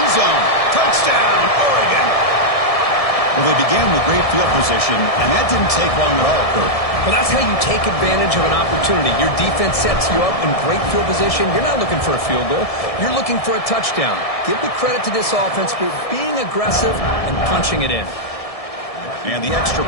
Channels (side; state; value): right; late; 1.7 ms